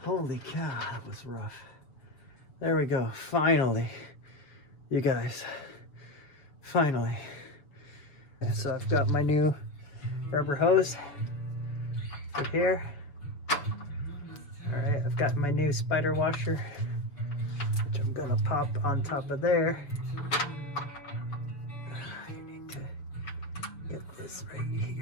Holy cow, that was rough. There we go. Finally. You guys. Finally. So I've got my new rubber hose right here. Alright, I've got my new spider washer, which I'm gonna pop on top of there. I need to get this right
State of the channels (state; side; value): late; right; 7.0 ms